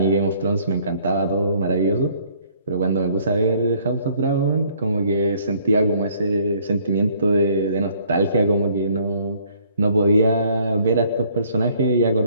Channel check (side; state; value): both; inverted; correlation -0.61